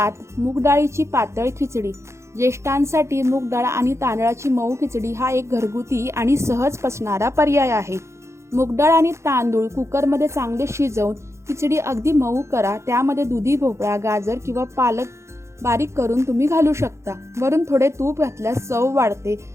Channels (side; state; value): left; late; 0.13 ms